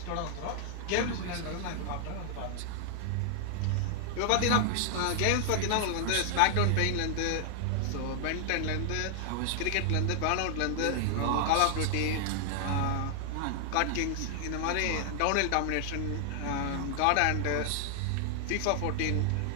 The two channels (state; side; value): different; both; correlation -0.01